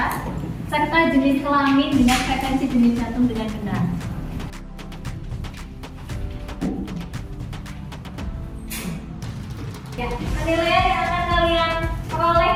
serta jenis kelamin dengan frekuensi denyut jantung dengan benar. Ya, penilaian yang akan kalian peroleh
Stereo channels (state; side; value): identical; both; correlation 1.00